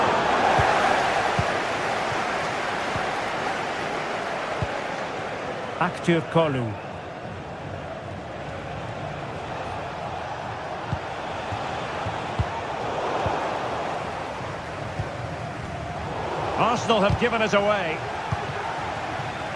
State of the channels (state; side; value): identical; both; correlation 1.00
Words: Active Kolu. Arsenal have given it away.